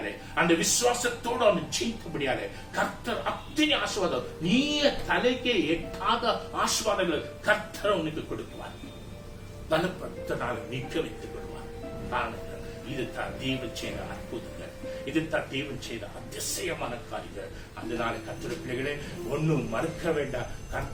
அந்த விசுவாசத்தோடு அவனை ஜெயித்தபடியாலே கர்த்தர் அத்தனை ஆசீர்வாதம், நீ தலைக்கே எட்டாத ஆசீர்வாதங்கள் கர்த்தர் உனக்கு கொடுக்குவார். பலப்படுத்தினால் நிற்க வைத்துக் கொள்வார். இதுதான் தேவன் செய்த அற்புதங்கள், இதுதான் தேவன் செய்த அதிசயமான காரியங்கள். அதனால கர்த்தர் பிள்ளைகளே, ஒன்னும் மறுக்க வேண்டாம்.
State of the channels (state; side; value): identical; both; correlation 1.00